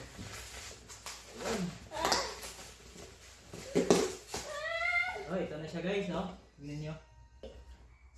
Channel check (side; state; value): both; identical; correlation 1.00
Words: Oh, ito na siya guys, no? Tignan nyo.